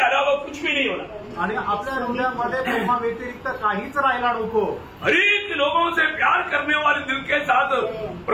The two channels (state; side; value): identical; both; correlation 1.00